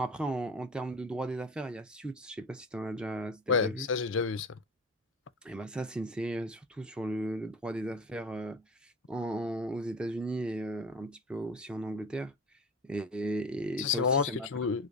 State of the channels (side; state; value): both; normal; correlation 0.33